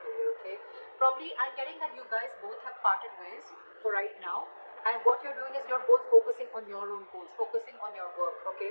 career, okay? Probably I'm getting that you guys both have parted ways for right now, and what you're doing is you're both focusing on your own goals, focusing on your work,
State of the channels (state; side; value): inverted; both; correlation -1.00